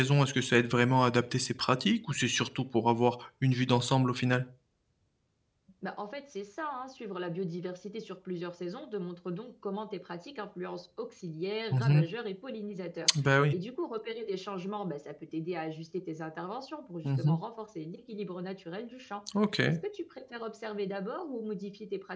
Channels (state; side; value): identical; both; correlation 1.00